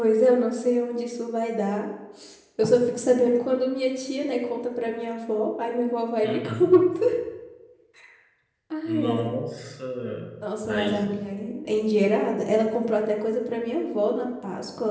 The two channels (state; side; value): identical; both; correlation 1.00